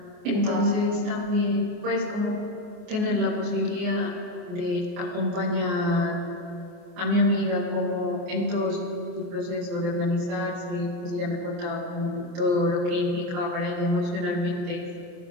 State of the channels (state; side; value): late; left; 28 ms